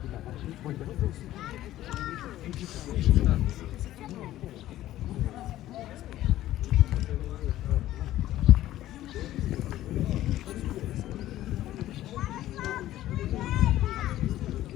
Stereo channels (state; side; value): quieter; right; 14.2 dB